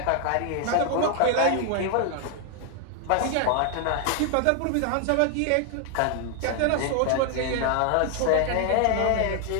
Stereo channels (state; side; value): different; both; correlation 0.00